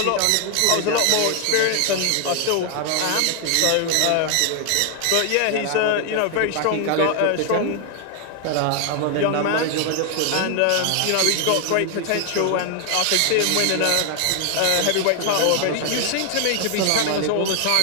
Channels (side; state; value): both; different; correlation 0.00